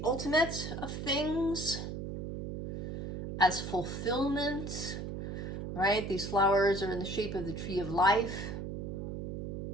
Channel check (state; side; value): noise; right; hum, 5 dB below the sound